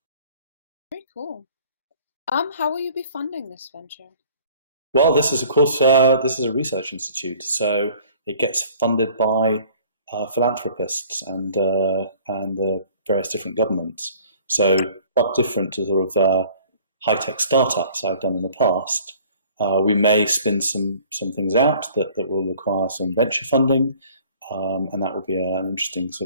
Very cool. How will you be funding this venture? Well, this is, of course, this is a research institute, so it gets funded by philanthropists and various different governments. So quite different to sort of high-tech startups I've done in the past. We may spin some things out that will require some venture funding, and that will be an interesting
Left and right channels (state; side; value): inverted; both; correlation -0.52